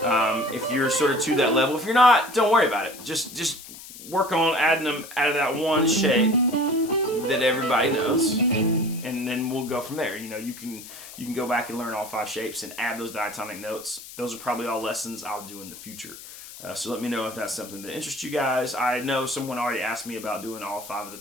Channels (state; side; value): noise; left; hiss, 15 dB below the sound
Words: If you're sort of to that level. If you're not, don't worry about it. Just work on adding them out of that one shape that everybody knows, and then we'll go from there. You know, you can go back and learn all 5 shapes and add those diatonic notes. Those are probably all lessons I'll do in the future. So let me know if that's something that interests you guys. I know someone already asked me about doing all 5 of the